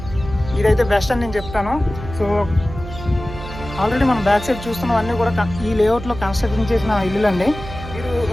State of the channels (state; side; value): noise; right; hum, 11 dB below the sound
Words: ఇదైతే బెస్ట్ అని నేను చెప్తాను. సో ఆల్రెడీ మనం బ్యాక్ సైడ్ చూస్తున్నవన్నీ కూడా ఈ లేఅవుట్లో కన్స్ట్రక్షన్ చేసిన ఇల్లులండి. మీరు